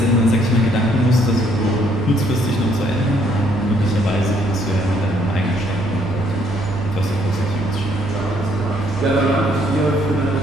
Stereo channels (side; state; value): both; normal; correlation 0.67